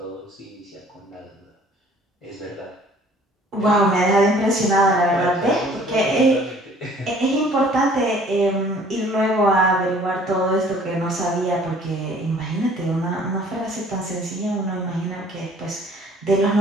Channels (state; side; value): normal; both; correlation 0.54